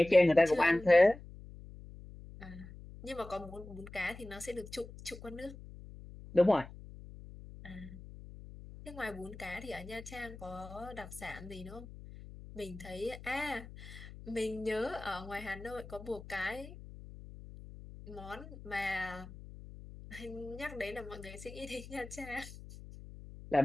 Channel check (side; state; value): left; noise; hum, 15 dB below the sound